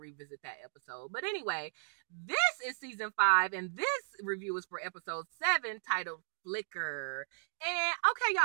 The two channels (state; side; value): silent; left; digital silence